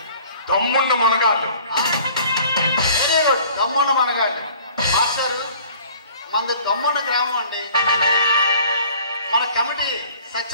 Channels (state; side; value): inverted; both; correlation -0.51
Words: దమ్ముండ మునగాళ్ళు. Very good. దమ్ముండ మునగాళ్ళు. మాస్టర్ మనది దమ్ముండ గ్రామం అండి. మన committee